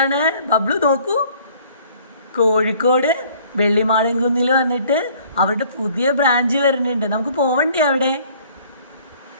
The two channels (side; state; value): both; inverted; correlation -0.56